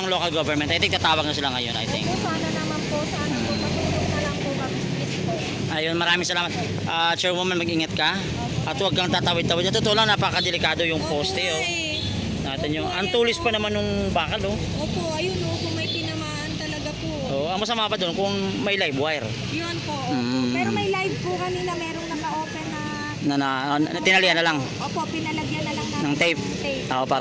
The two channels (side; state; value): both; identical; correlation 1.00